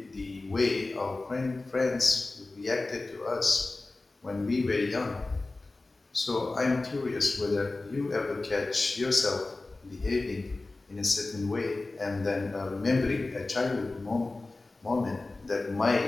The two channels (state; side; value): quieter; right; 3.2 dB